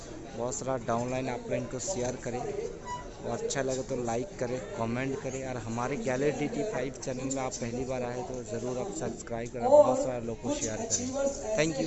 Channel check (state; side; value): identical; both; correlation 1.00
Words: बहुत सारा डाउनलाइन आप इनको शेयर करें और अच्छा लगे तो लाइक करें, कमेंट करें। और हमारे गैलरी DT5 चैनल में आप पहली बार आए तो ज़रूर आप सब्सक्राइब करें, बहुत सारे लोगों को शेयर करें। थैंक